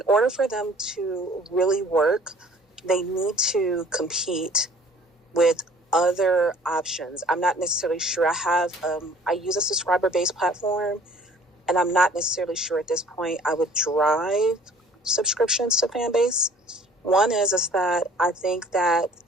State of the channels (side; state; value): both; normal; correlation 0.52